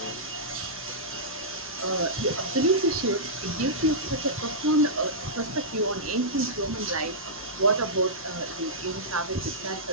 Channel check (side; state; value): both; normal; correlation -0.14